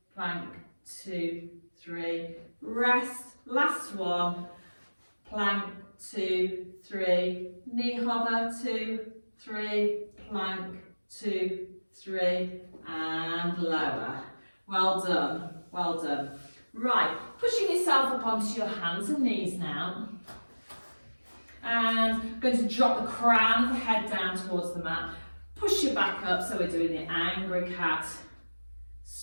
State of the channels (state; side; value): inverted; both; correlation -1.00